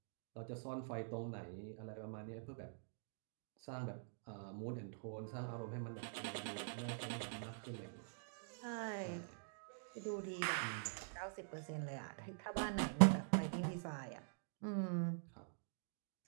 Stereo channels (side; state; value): left; silent; digital silence